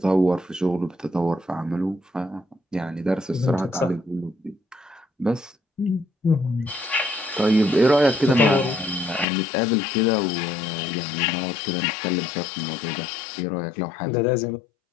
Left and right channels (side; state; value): right; drops out; at 9.2 s